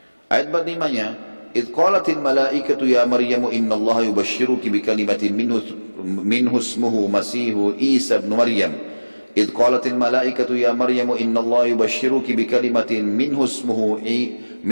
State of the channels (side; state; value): both; inverted; correlation -1.00